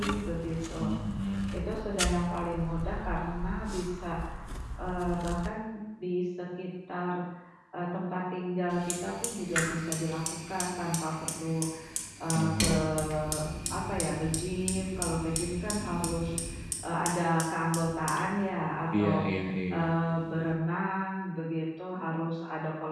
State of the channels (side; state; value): both; identical; correlation 1.00